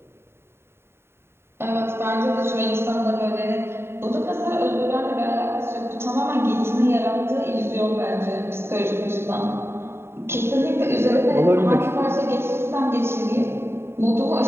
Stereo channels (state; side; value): late; left; 0.12 ms